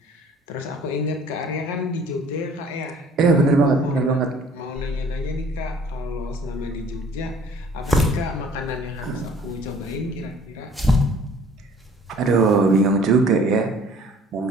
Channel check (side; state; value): both; normal; correlation 0.53